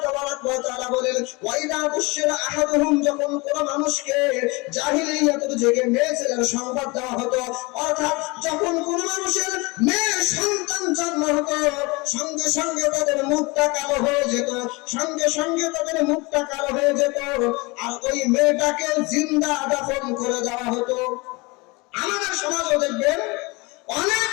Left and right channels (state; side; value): quieter; right; 25.9 dB